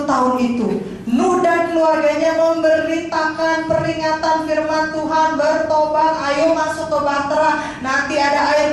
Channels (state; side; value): identical; both; correlation 1.00